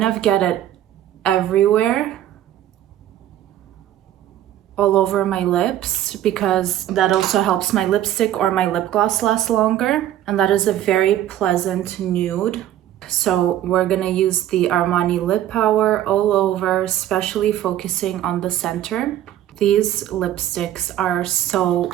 of get it everywhere, all over my lips, because that also helps my lipstick or my lip gloss last longer. And that is a very pleasant nude. So we're gonna use the Armani lip power all over, especially focusing on the center. These lipsticks are so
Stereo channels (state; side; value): quieter; left; 12.2 dB